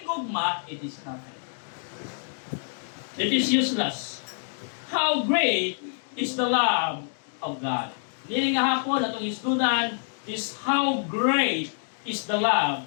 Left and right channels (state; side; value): silent; right; digital silence